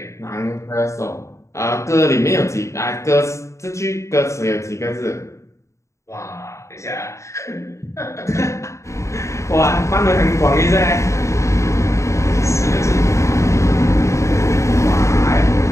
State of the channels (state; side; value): late; right; 0.14 ms